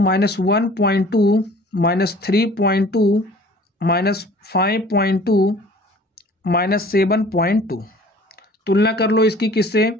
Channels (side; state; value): both; normal; correlation 0.49